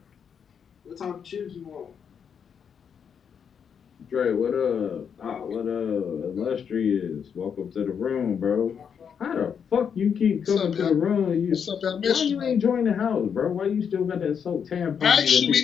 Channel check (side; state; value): right; quieter; 7.3 dB